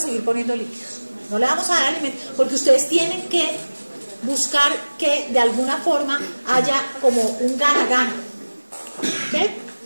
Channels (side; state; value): both; inverted; correlation -1.00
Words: poniendo líquidos. No le vamos a dar alimento, porque ustedes tienen que buscar que de alguna forma haya como un gana-gana.